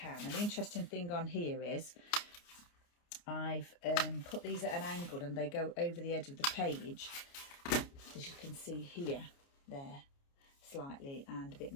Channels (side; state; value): right; late; 29 ms